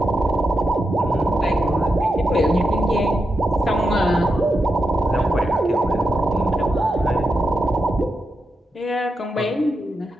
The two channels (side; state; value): both; normal; correlation 0.87